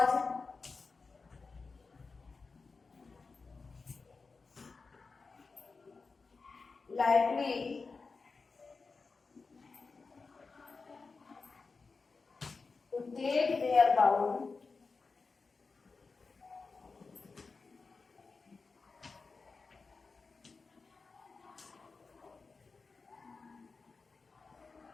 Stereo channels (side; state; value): right; quieter; 4.4 dB